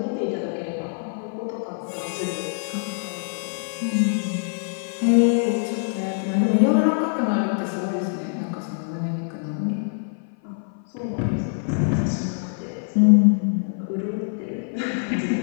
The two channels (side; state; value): right; silent; 55 dB below the other